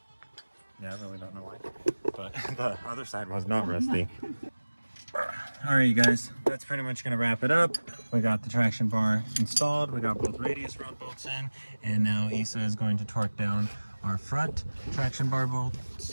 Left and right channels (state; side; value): inverted; both; correlation -1.00